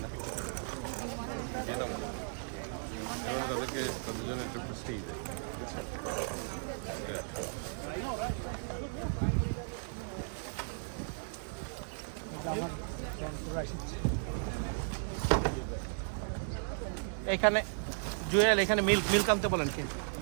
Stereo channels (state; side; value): silent; left; digital silence